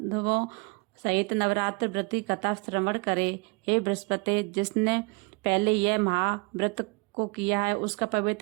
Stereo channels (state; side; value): quieter; left; 29.9 dB